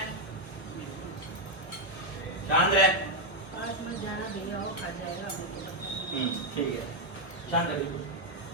शांत रहे, आज मत जाना भैया, वो खा जाएगा मेरे को। ठीक है, शांत है बिल्कुल,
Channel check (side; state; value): right; late; 1.2 ms